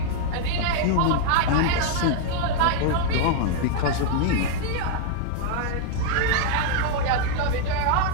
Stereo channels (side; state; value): both; different; correlation 0.00